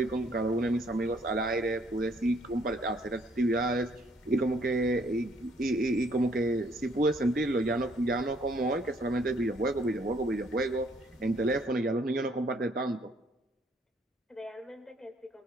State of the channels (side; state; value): both; normal; correlation 0.65